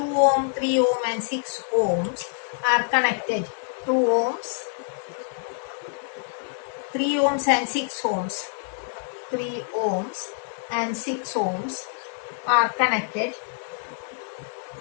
ohm, 3 ohm and 6 ohms are connected? 2 ohms, 3 ohms and 6 ohms, 3 ohms and 6 ohms are connected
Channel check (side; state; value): right; silent; 61 dB below the other